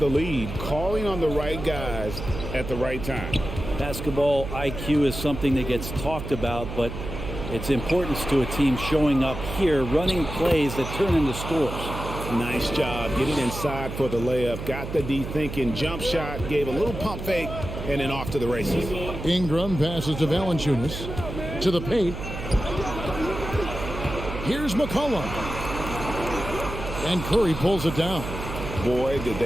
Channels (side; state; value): right; noise; hum, 7 dB below the sound